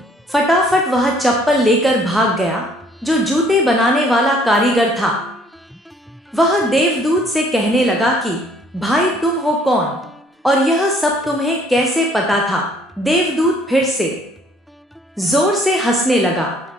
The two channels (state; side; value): normal; both; correlation 0.60